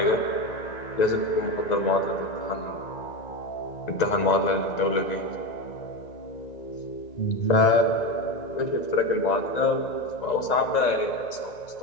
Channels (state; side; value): late; right; 1.9 ms